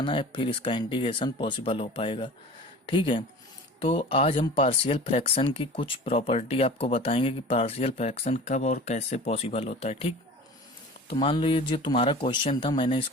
है फिर इसका इंटीग्रेशन पॉसिबल हो पाएगा। ठीक है। तो आज हम पार्शियल फ्रैक्शन की कुछ प्रॉपर्टी आपको बताएंगे कि पार्शियल फ्रैक्शन कब और कैसे पॉसिबल होता है। ठीक। तो मान लो ये जो तुम्हारा क्वेश्चन था, मैंने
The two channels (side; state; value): both; normal; correlation 0.39